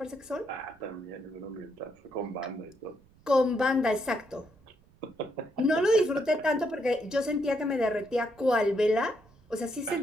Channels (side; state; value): right; noise; rumble, 29 dB below the sound